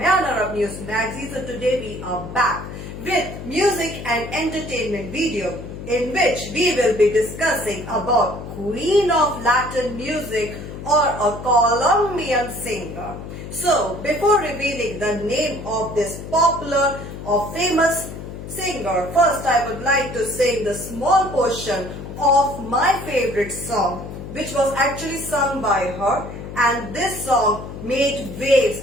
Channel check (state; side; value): noise; left; hum, 10 dB below the sound